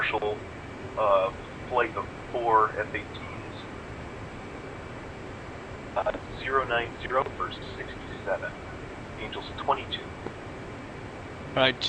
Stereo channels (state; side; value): identical; both; correlation 1.00